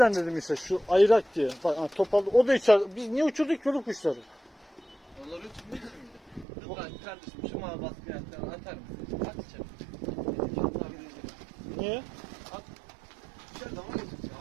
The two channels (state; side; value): drops out; left; at 6.5 s